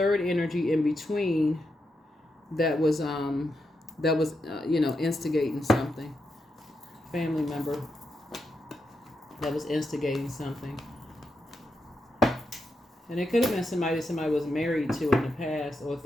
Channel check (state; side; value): normal; both; correlation 0.85